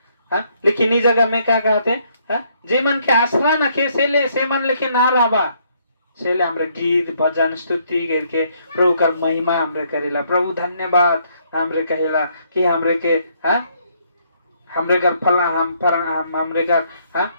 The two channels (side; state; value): both; inverted; correlation -0.69